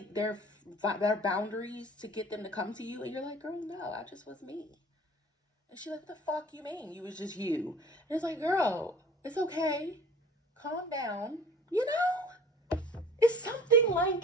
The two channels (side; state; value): both; normal; correlation 0.46